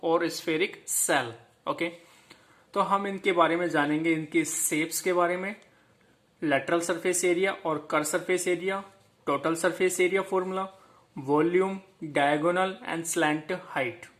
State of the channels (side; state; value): both; identical; correlation 1.00